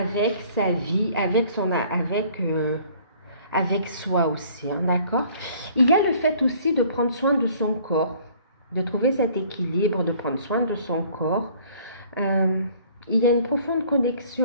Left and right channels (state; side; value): inverted; both; correlation -0.55